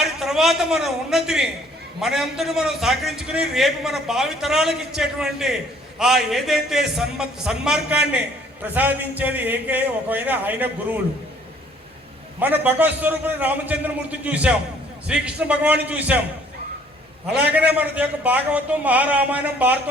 తర్వాత మన ఉన్నతిని మన అంతటి మనం సహకరించుకుని రేపు మన భావితరాలకు ఇచ్చేటువంటి ఆ ఏదైతే సన్మార్గాన్ని ప్రసాదించేది ఒకవైనా ఆయన గురువులు। మన భగవత్ స్వరూపుడు రామచంద్రమూర్తిని చూసాం, శ్రీకృష్ణ భగవాన్ని చూసాం, అలాగనే మన యొక్క భాగవతం, మహారామాయణం,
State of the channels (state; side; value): normal; both; correlation 0.59